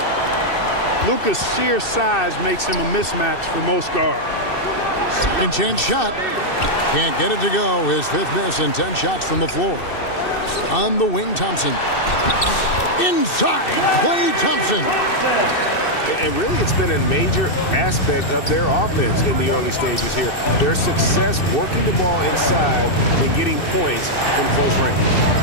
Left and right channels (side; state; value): right; late; 2.6 ms